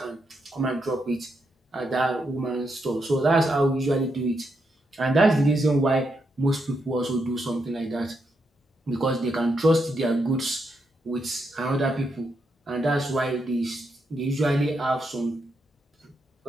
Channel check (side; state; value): both; normal; correlation 0.81